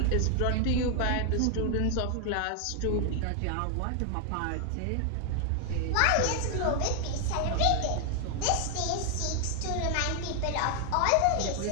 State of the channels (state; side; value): different; both; correlation 0.00